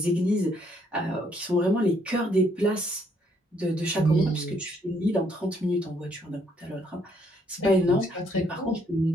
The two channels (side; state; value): both; normal; correlation 0.69